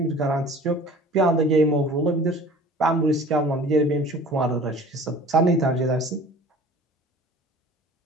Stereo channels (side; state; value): both; normal; correlation 0.45